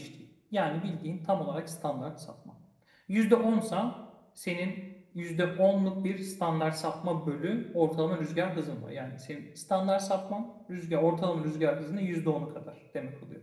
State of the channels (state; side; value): identical; both; correlation 1.00